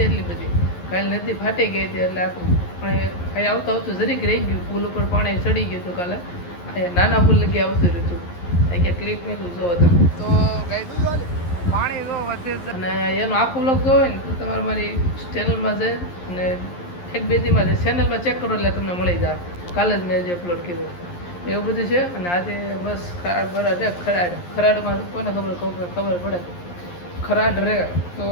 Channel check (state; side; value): late; right; 11 ms